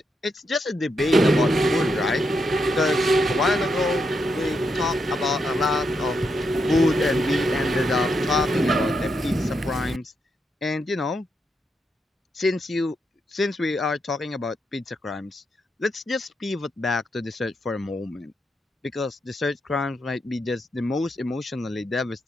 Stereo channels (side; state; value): both; normal; correlation 0.82